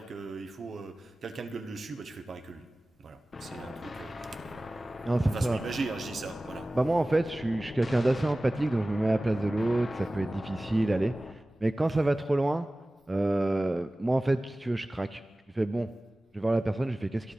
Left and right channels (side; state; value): both; normal; correlation 0.97